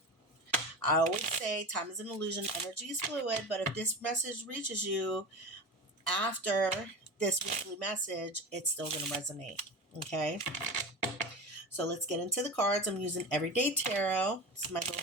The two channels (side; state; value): both; normal; correlation 0.28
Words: I always say time is an illusion, energy is fluid, but if this message reaches you after this weekly message, it's still going to resonate. Okay? So let's get into the cards. I'm using Everyday Tarot. It's my little